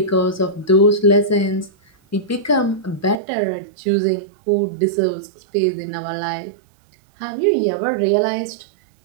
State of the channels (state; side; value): drops out; left; at 3.2 s